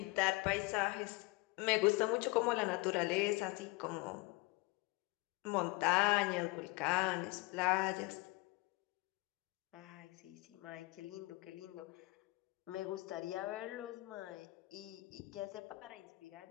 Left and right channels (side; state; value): right; quieter; 23.8 dB